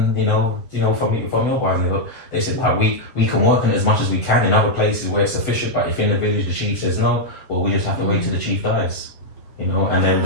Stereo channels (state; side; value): late; right; 7.8 ms